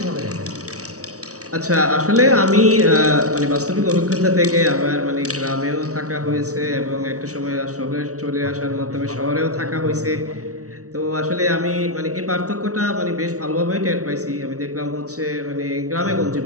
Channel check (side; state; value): left; late; 0.66 ms